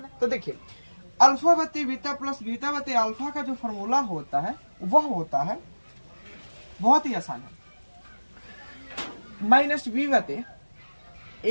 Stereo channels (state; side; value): inverted; both; correlation -1.00